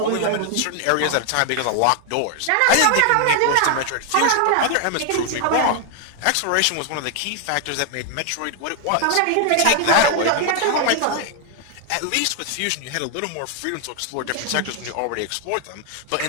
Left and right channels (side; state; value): both; different; correlation 0.00